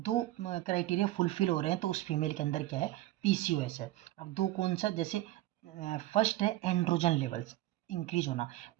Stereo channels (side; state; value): left; quieter; 15.9 dB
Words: क्राइटेरिया फुलफिल हो रहे हैं तो उस फीमेल के अंदर क्या है? पीसीओएस है। अब दो कौन सा? जैसे फर्स्ट है एंड्रोजन लेवल्स इंक्रीज होना।